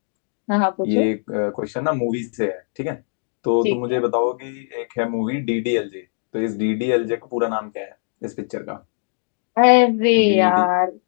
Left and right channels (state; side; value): silent; right; digital silence